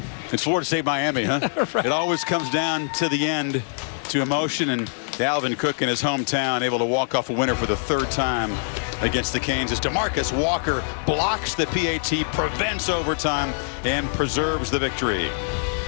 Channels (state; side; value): silent; right; digital silence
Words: It's Florida State, Miami, huh? Right. It always comes down to the end, to emotion, and Dalvin Cook in his hometown able to walk off a winner for the 3rd time against the Canes as DeMarcus Walker blocks the PAT, prevents overtime, and preserves the victory.